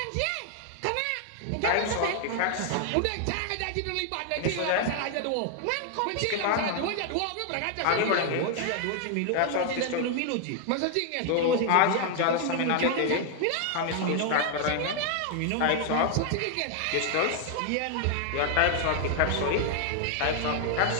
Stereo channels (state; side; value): different; both; correlation 0.00